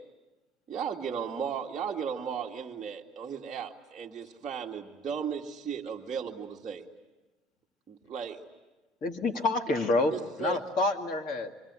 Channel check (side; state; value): both; normal; correlation 0.50